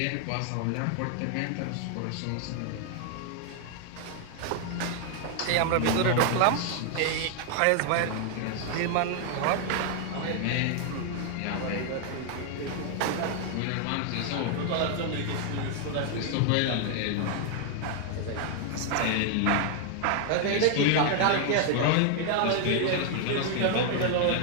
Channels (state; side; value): different; both; correlation 0.00